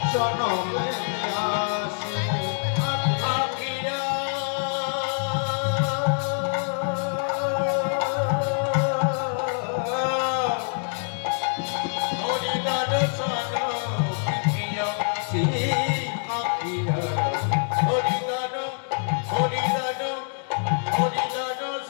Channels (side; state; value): right; silent; 61 dB below the other